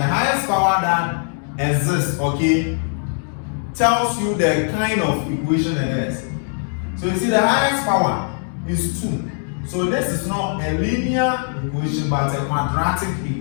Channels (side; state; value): right; silent; 58 dB below the other